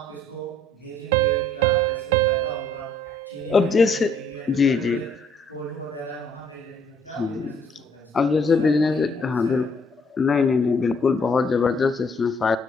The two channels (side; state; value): both; normal; correlation 0.63